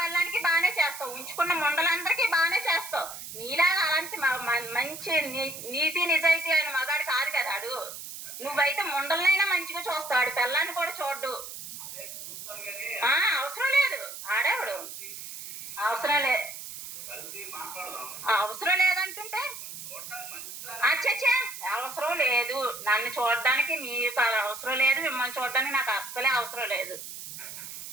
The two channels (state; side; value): noise; right; hiss, 10 dB below the sound